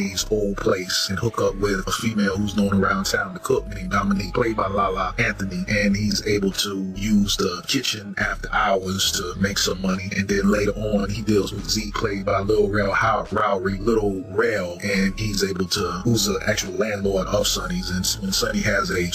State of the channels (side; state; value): both; identical; correlation 1.00